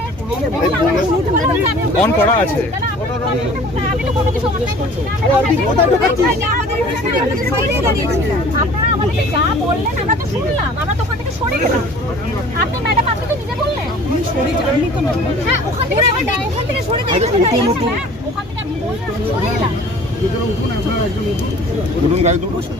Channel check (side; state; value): both; normal; correlation 0.47